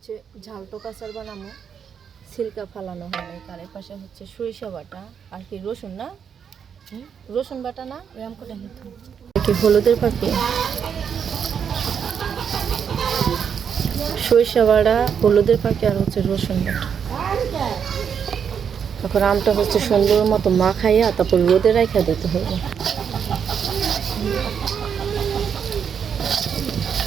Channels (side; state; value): left; quieter; 7.4 dB